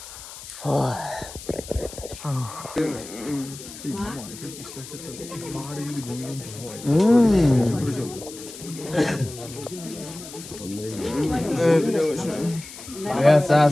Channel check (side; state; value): left; noise; hiss, 14 dB below the sound